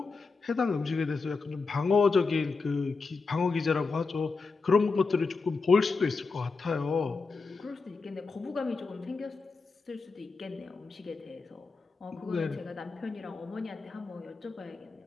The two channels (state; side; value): quieter; right; 4.3 dB